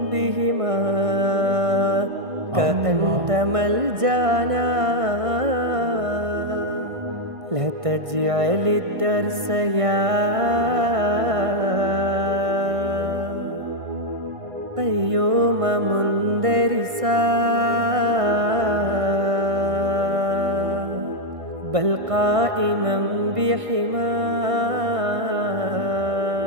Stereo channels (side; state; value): left; late; 1.6 ms